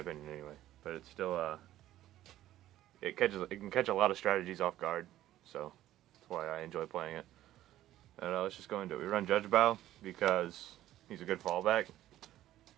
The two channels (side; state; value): left; quieter; 13.7 dB